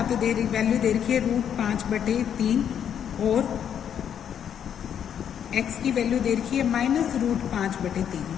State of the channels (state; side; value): quieter; right; 8.8 dB